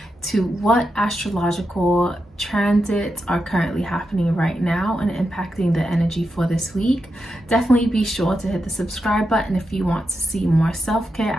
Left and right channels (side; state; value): both; normal; correlation 0.87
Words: to what astrological transits are currently happening right now and impacting the energy for this week. Definitely be sure to hit the subscribe button if you want to see more self-care,